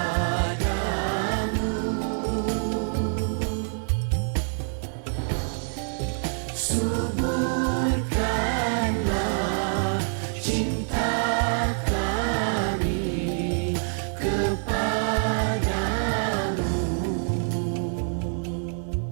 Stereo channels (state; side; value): silent; left; 56 dB below the other